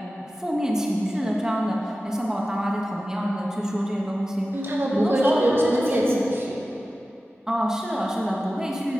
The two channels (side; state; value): both; normal; correlation 0.94